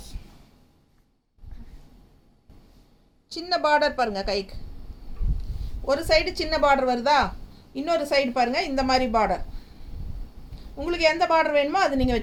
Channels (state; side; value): identical; both; correlation 1.00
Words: சின்ன பார்டர் பாருங்க, கைக்கு ஒரு சைடு சின்ன பார்டர் வருதா, இன்னொரு சைடு பாருங்க இந்த மாதிரி பார்டர். உங்களுக்கு எந்த பார்டர் வேணுமோ அது நீங்கள்